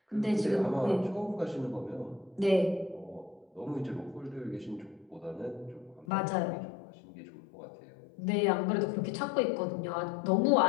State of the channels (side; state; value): right; drops out; at 6.1 s